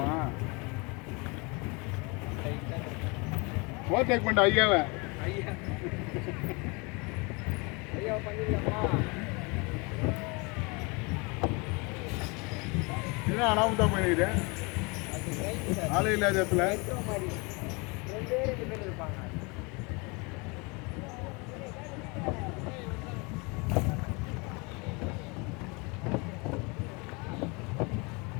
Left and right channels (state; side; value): quieter; right; 28.9 dB